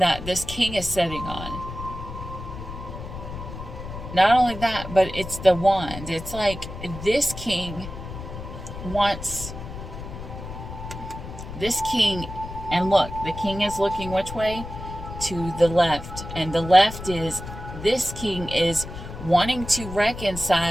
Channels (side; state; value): left; noise; rumble, 10 dB below the sound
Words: this king is sitting on. Not only that, but it's the wand. It's like this king wants this king, and look, the king is looking which way? To the left. And the left is, this king is wanting to